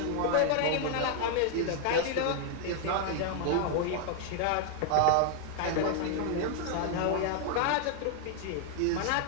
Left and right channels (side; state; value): both; different; correlation 0.00